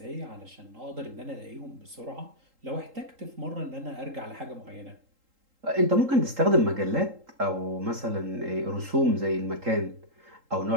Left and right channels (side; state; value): left; late; 3.8 ms